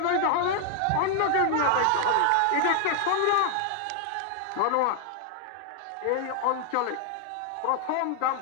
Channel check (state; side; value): different; both; correlation 0.00